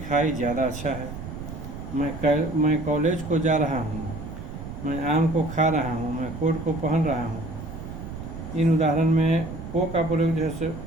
खाई ज़्यादा अच्छा है। मैं कॉलेज को जा रहा हूँ, मैं आम को खा रहा हूँ, मैं कोट को पहन रहा हूँ। इन उदाहरण में को का प्रयोग जैसे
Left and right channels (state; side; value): noise; right; rumble, 9 dB below the sound